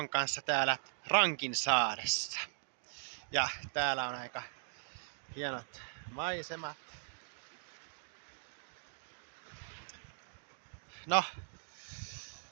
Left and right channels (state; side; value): silent; left; digital silence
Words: kanssa täällä Rankinsaaressa. Ja täällä on aika hienot maisemat. No,